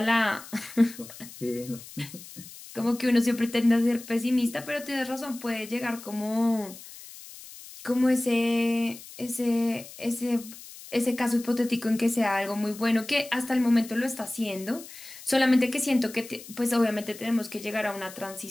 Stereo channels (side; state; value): left; noise; hiss, 16 dB below the sound